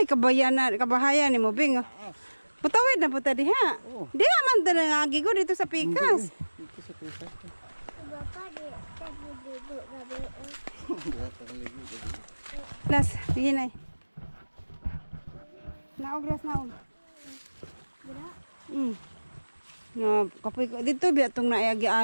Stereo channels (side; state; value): both; inverted; correlation -1.00